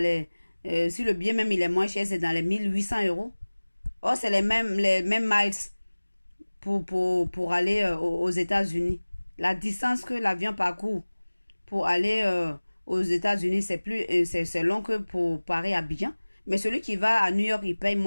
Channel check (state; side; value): inverted; both; correlation -1.00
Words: les... si le billet même il est moins cher, c'est dans les 1800 euros. Or, c'est les mêmes miles pour aller aux États-Unis. La distance que l'avion parcourt pour aller aux États-Unis, c'est long que pour Paris-Abidjan. Mais celui qui va à New York, il paye